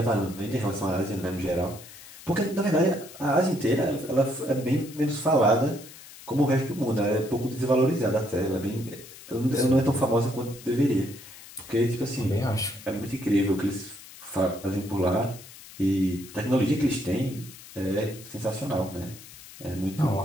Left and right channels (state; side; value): noise; left; hiss, 17 dB below the sound